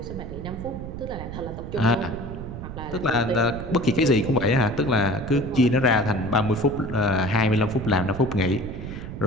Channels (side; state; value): right; noise; rumble, 9 dB below the sound